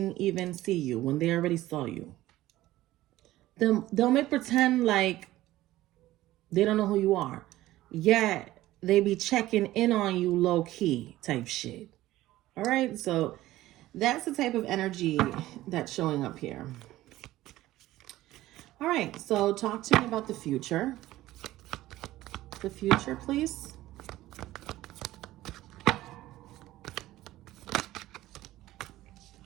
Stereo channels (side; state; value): left; quieter; 15.9 dB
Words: even see you when they already saw you. They'll make pretend like they don't know who you are. Yet they be checking in on you low key type shit. All right, so that's the type of energy that's showing up here. All right, so talk to me about the future. The future, please.